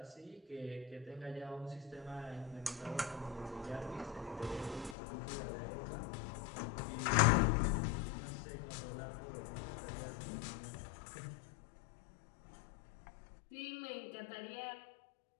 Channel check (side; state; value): right; drops out; at 5.0 s